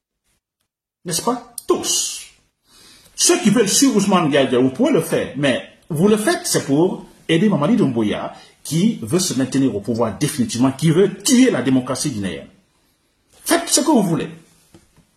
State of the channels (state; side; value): identical; both; correlation 1.00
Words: N'est-ce pas? Tous. Ceux qui veulent suivre Ousmane Gawal Diallo, vous pouvez le faire. Mais vous le faites, c'est pour aider Mamadi Doumbouya, qui veut se maintenir au pouvoir définitivement, qui veut tuer la démocratie guinéenne. Faites ce que vous voulez.